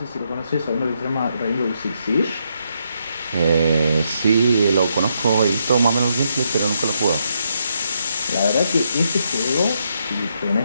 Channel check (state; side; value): inverted; both; correlation -0.78